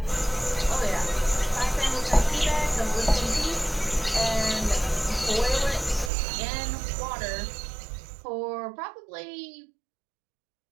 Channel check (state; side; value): drops out; left; at 6.1 s